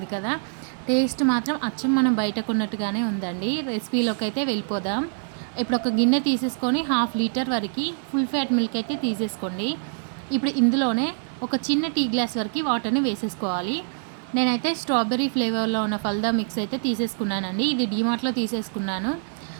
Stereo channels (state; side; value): silent; left; 62 dB below the other